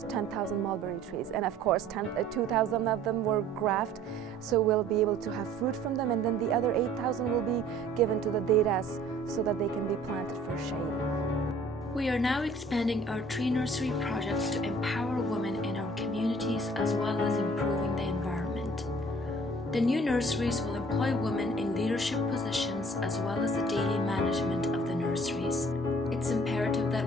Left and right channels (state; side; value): normal; both; correlation 0.53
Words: 10,000 mulberry trees, and of course 2,000 of them were grafted, so we'll be able to have fruit from them, and then the other 8,000 will be given to the deras so that they can be planted for shade. We are now expanding our tree nursery projects to empower women in our communities as well as improving the environment. The new nurseries will employ women in leadership positions as well as the daily management of the nurseries. It's imperative